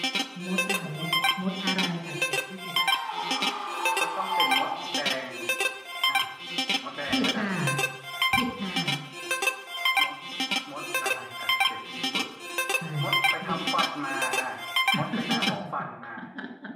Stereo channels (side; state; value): both; identical; correlation 1.00